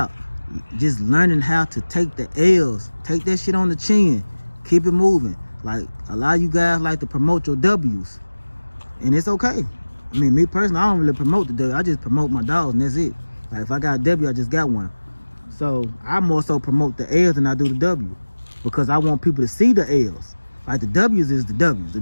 Just learning how to take the L's, take that shit on the chin, keep it moving. Like, a lot of you guys like to promote your W's, and it's okay. I mean, me personally, I don't really promote the W. I just promote my dogs, and that's it. Like, if I got a W, I just got one. So I more so promote the L's than I do the W, because I want people to see the L's. Like, the W's is the W's. The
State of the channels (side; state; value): both; inverted; correlation -1.00